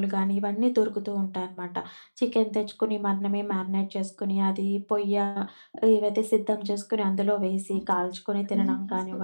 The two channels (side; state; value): both; inverted; correlation -1.00